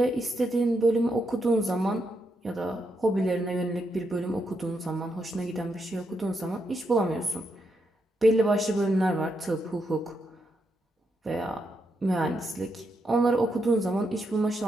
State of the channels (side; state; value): both; normal; correlation 0.81